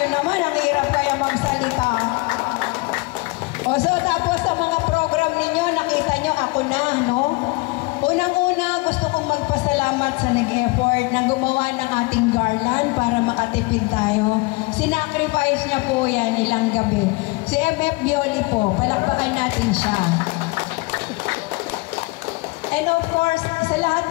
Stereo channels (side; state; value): right; quieter; 25.6 dB